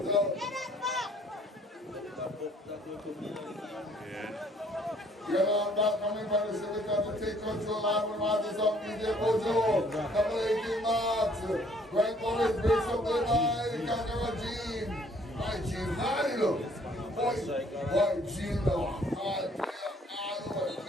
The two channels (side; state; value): both; normal; correlation 0.61